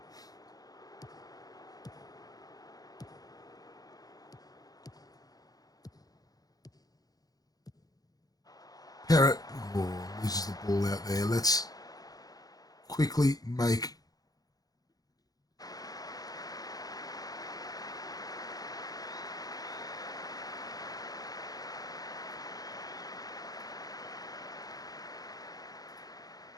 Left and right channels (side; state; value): right; late; 0.18 ms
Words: Parrot loses the ball out there. Let's quickly make